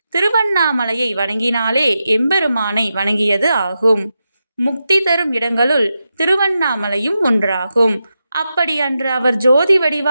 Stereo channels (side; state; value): both; inverted; correlation -0.89